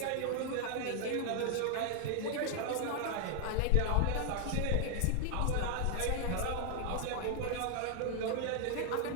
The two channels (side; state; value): both; different; correlation 0.00